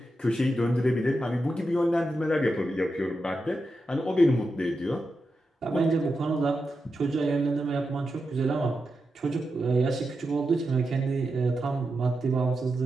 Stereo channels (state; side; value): normal; both; correlation 0.88